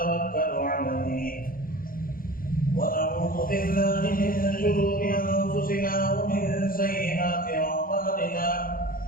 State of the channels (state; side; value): late; right; 0.41 ms